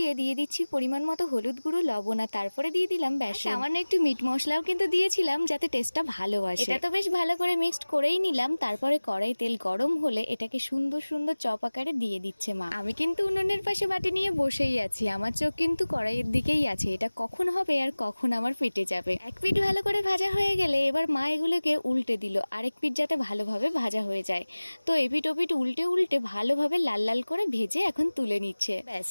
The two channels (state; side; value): inverted; both; correlation -1.00